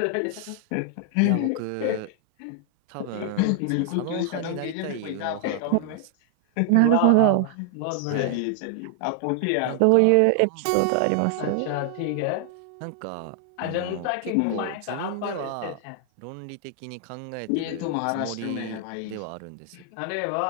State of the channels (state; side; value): different; both; correlation 0.00